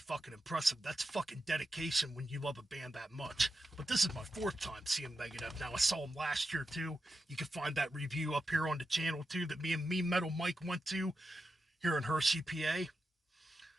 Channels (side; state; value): both; normal; correlation 0.89